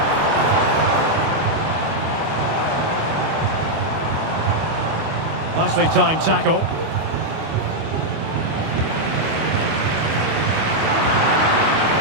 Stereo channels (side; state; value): left; late; 25 ms